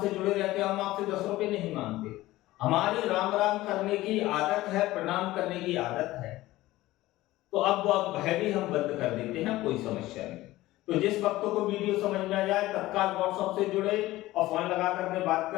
जुड़े रहते हो, हम आपसे 10 रुपए नहीं मांगते। हमारी राम राम करने की आदत है, प्रणाम करने की आदत है, तो अब भय भी हम बंद कर देते हैं, कोई समस्या नहीं। तो जिस भक्तों को वीडियो समझ में आ जाए तत्काल व्हाट्सएप से जुड़े और फोन लगा करके बात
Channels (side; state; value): right; quieter; 17.2 dB